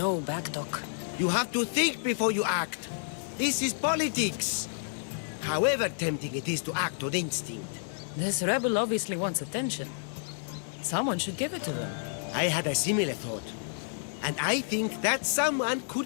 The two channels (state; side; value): silent; right; digital silence